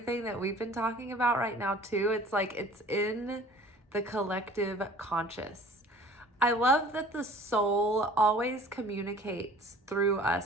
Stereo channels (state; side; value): normal; both; correlation 0.48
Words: that we've been talking about right now too. It's like it's in the collective conscious. I love that the soul always communicates through